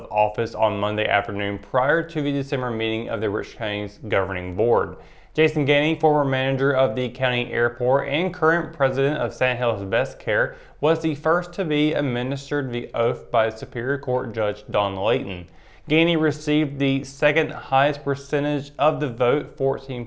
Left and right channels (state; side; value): identical; both; correlation 1.00